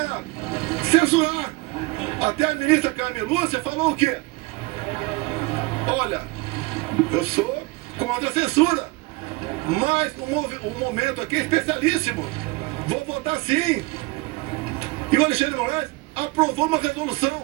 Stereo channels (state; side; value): quieter; left; 23.1 dB